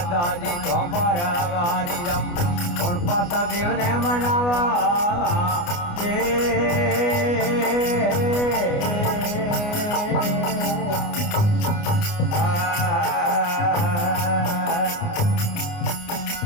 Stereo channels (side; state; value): right; late; 29 ms